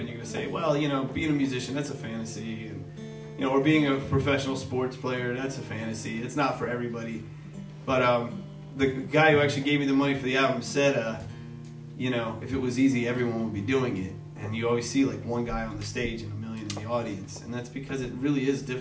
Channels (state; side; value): identical; both; correlation 1.00